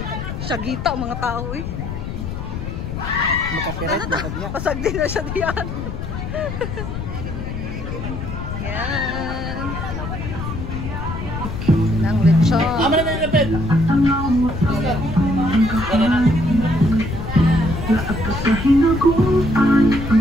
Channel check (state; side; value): noise; left; rumble, 6 dB below the sound